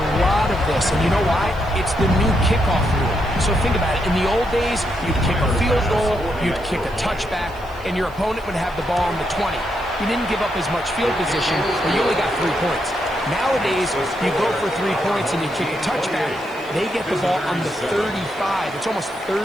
lot of this, and you know why? It's the new kickoff rule. So think about it. In the old days, you'd kick a field goal, you'd kick a touchback, and your opponent would have the ball on the 20. You didn't give up as much field position, but you only got 3 points. Nowadays, you go for 3 points and you kick a touchback. They get the ball on the 35. It's almost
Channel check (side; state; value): left; noise; hiss, 27 dB below the sound